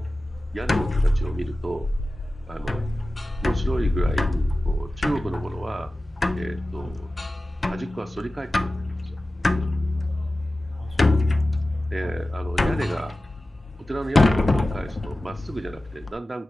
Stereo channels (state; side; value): normal; both; correlation 0.96